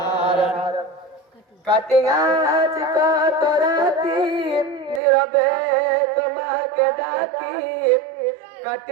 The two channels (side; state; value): left; drops out; at 5.0 s